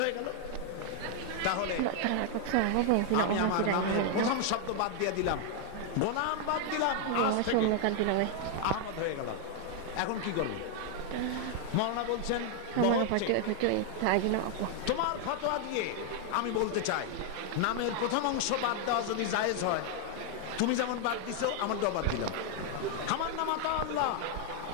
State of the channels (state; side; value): different; both; correlation 0.00